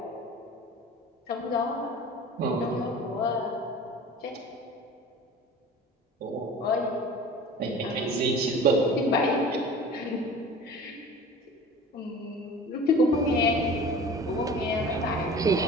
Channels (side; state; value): both; normal; correlation 0.40